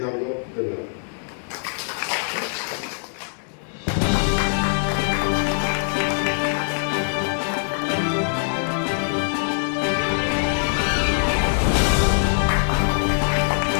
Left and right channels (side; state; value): right; silent; 64 dB below the other